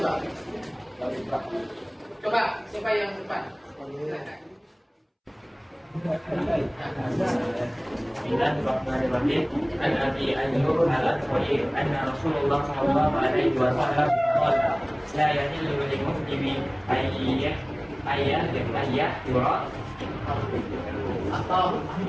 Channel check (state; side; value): identical; both; correlation 1.00